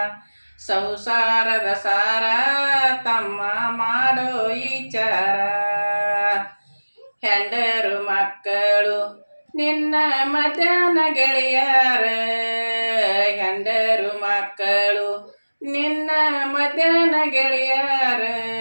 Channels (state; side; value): inverted; both; correlation -1.00